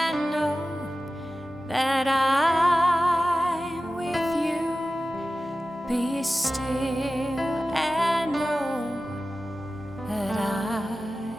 know that I'm with you. Be still and know that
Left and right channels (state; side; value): normal; both; correlation 0.95